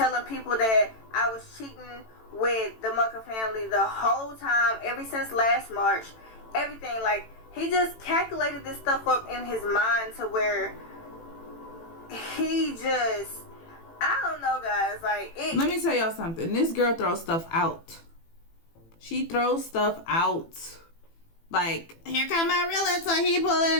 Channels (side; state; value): right; late; 18 ms